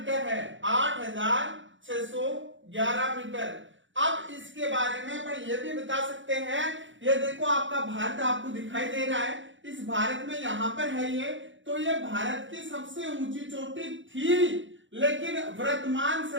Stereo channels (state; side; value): late; left; 0.55 ms